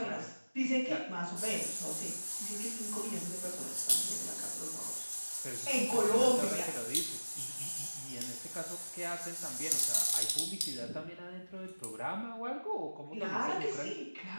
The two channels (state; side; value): inverted; both; correlation -1.00